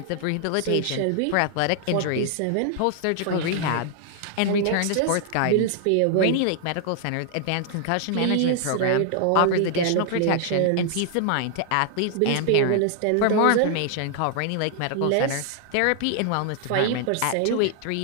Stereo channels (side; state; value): both; different; correlation 0.00